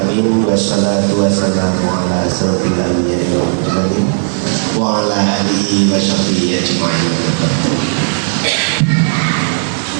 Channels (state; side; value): silent; left; digital silence